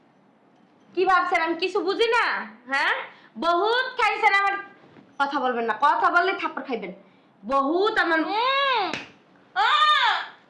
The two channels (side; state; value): both; identical; correlation 1.00